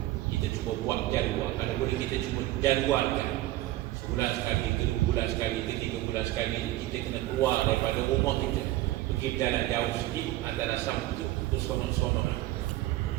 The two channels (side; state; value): left; quieter; 16.4 dB